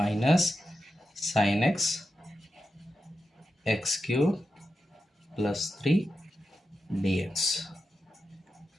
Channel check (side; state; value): both; normal; correlation 0.89